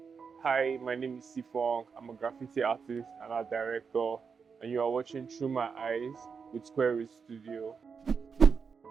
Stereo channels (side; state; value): left; quieter; 5.8 dB